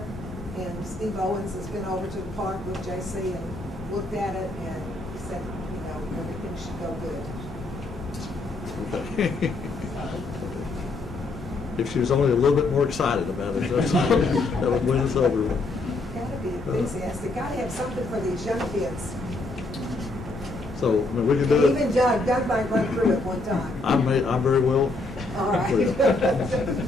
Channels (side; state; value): right; quieter; 3.1 dB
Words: And Steve Owens has been over to the park with JC and looked at it and he said, you know, everything should go good. If she was only a little bit more excited about it, that would win us over. Gotta be enthusiastic. Gotta have something for these young kids. So, I mean, we can do it. Even Doug might run through it one time. I'm very well. All right.